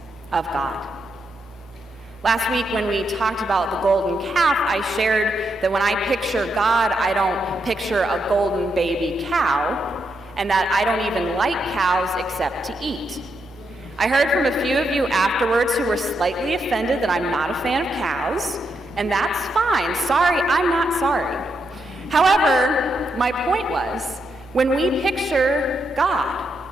of God. Last week when we talked about the golden calf, I shared that when I picture God, I don't picture a golden baby cow, and that I don't even like cows except to eat. I heard from a few of you afterwards who were slightly offended that I'm not a fan of cows, and that's fine. Sorry, I'm not sorry. However, my point was, when we picture God,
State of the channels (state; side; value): normal; both; correlation 0.81